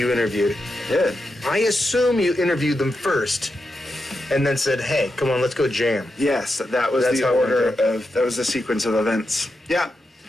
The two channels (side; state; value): both; normal; correlation 0.87